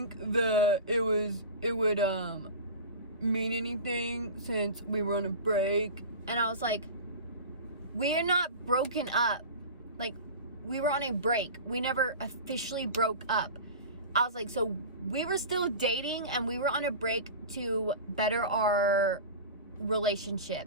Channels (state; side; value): inverted; both; correlation -0.32